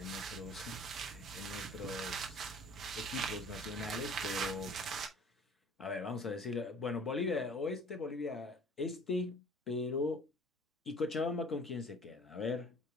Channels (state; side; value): normal; both; correlation 0.50